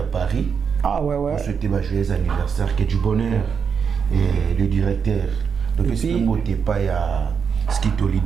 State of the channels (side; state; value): left; quieter; 6.5 dB